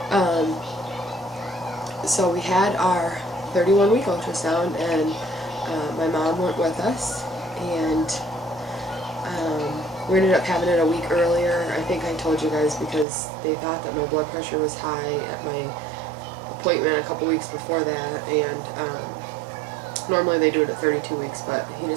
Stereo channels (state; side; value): drops out; left; at 13.1 s